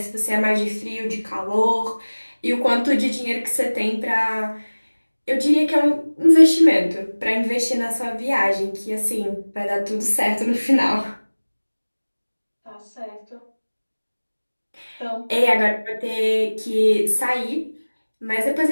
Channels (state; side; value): inverted; both; correlation -1.00